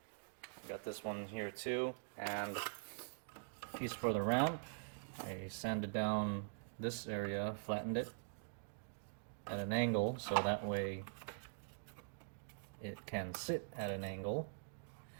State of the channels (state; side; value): silent; left; digital silence